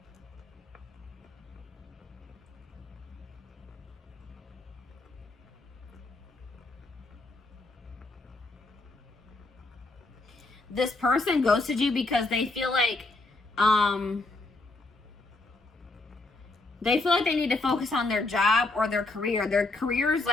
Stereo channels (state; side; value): quieter; right; 3.1 dB